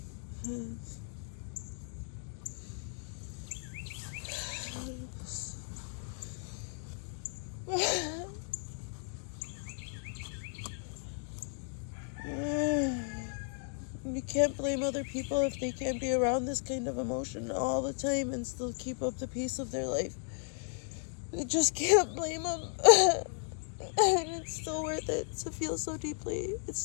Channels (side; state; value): right; silent; 54 dB below the other